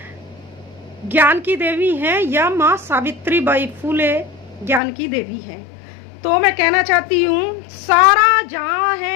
ज्ञान की देवी हैं या माँ सावित्रीबाई फूले ज्ञान की देवी हैं। तो मैं कहना चाहती हूँ, सारा जहां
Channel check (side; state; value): right; drops out; at 4.8 s